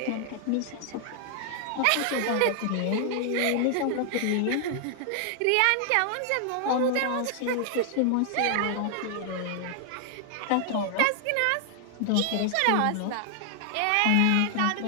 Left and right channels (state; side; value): different; both; correlation 0.00